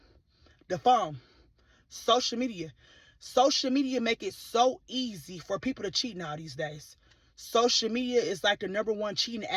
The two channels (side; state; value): both; identical; correlation 1.00